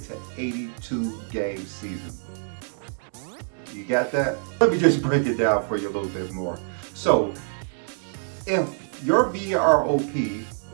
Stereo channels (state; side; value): silent; left; 61 dB below the other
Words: to 82 game season. You got that? Let me just break it down for you a little bit more. So if your VROP